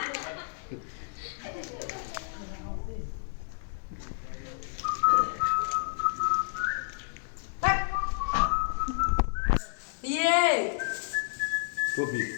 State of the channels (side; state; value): right; silent; digital silence